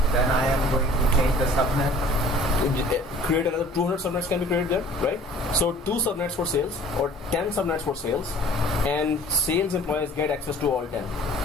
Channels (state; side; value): normal; both; correlation 0.50